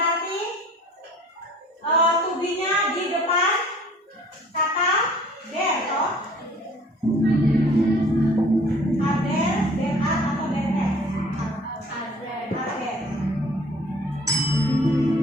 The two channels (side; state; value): both; normal; correlation 0.52